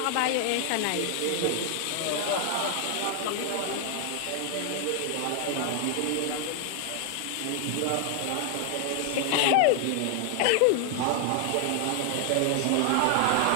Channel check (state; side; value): different; both; correlation 0.00